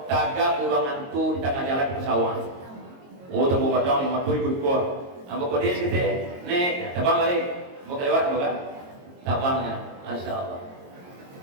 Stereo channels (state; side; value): late; left; 22 ms